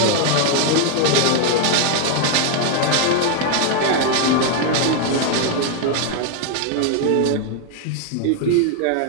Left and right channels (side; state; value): both; different; correlation 0.00